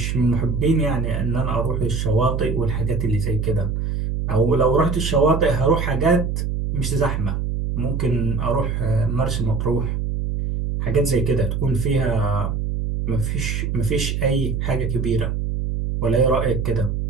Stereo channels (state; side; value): noise; right; hum, 1 dB below the sound